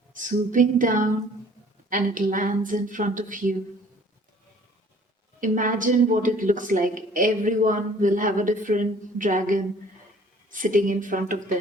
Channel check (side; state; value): both; normal; correlation 0.53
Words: swooping down, and it lands in front of you. Imagine what it looks like. Everyone will have a different dragon sitting in front of them.